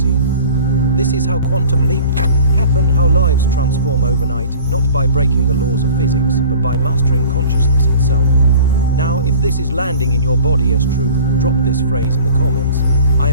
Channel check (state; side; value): inverted; both; correlation -0.43